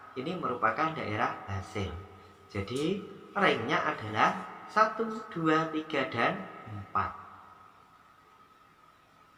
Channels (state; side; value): identical; both; correlation 1.00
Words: ini merupakan daerah hasil. Jadi, ringnya adalah 1, 2, 3, dan 4.